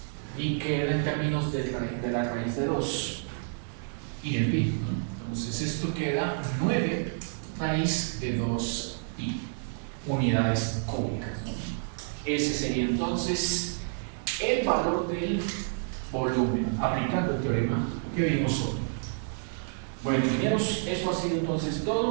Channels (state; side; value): silent; left; digital silence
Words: y queda en términos de la raíz de 2 y el pi, ¿no? Entonces esto queda 9 raíz de 2 pi unidades cúbicas, ¿no? Ese sería entonces el valor del volumen aplicando el teorema que vimos hoy. Bueno, ingenieros, eso ha sido entonces